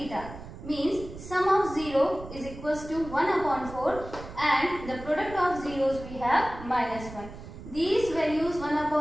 means sum of 0 is equals to 1 upon 4 and the product of zeros we have minus 1. These values 1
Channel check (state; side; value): noise; right; rumble, 13 dB below the sound